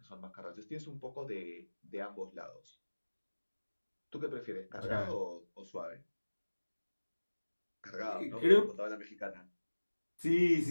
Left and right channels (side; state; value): both; inverted; correlation -1.00